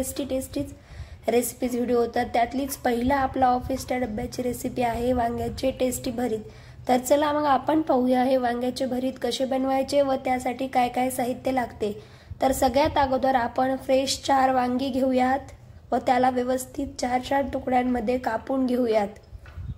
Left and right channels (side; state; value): both; identical; correlation 1.00